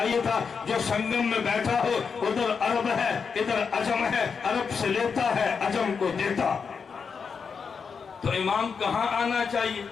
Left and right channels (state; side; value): quieter; right; 5.8 dB